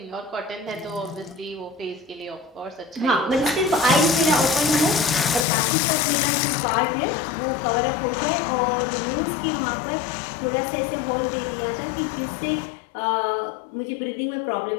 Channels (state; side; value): drops out; right; at 5.5 s